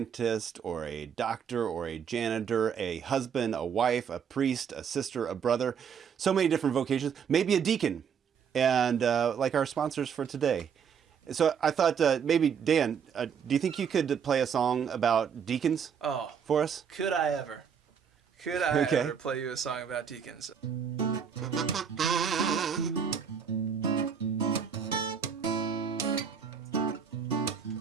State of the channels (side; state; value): left; quieter; 7.2 dB